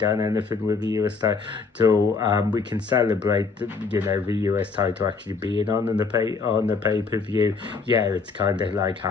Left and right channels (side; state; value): right; quieter; 4.6 dB